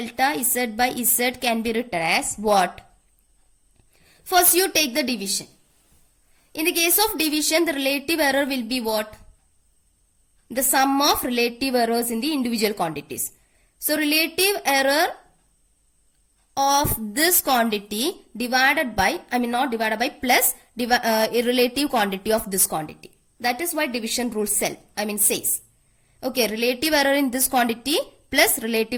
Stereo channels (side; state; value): both; identical; correlation 1.00